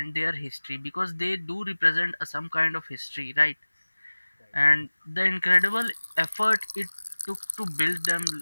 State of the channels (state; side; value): inverted; both; correlation -1.00